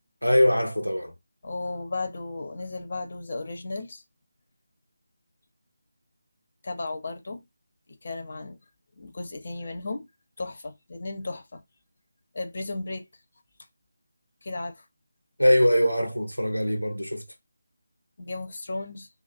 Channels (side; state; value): both; inverted; correlation -0.98